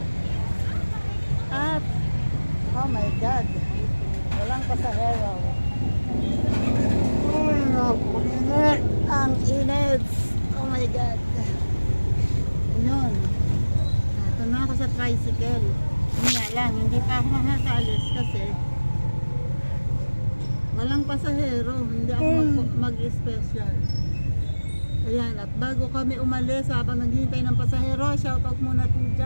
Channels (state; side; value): inverted; both; correlation -1.00